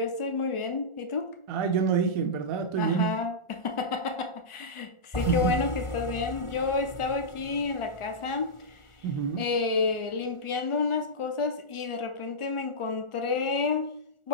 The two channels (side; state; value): right; late; 1.4 ms